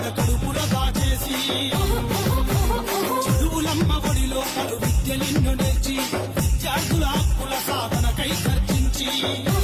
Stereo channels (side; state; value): both; identical; correlation 1.00